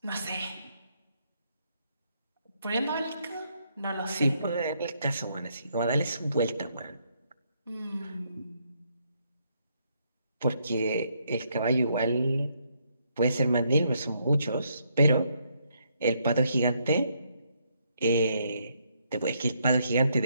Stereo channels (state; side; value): inverted; both; correlation -0.74